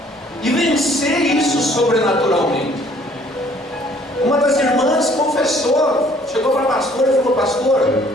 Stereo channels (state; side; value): normal; both; correlation 0.59